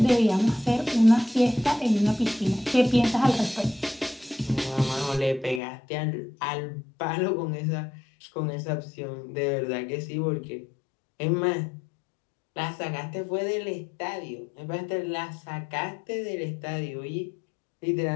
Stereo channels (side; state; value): right; drops out; at 5.6 s